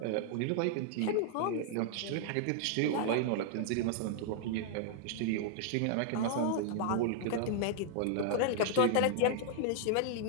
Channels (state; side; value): different; both; correlation 0.00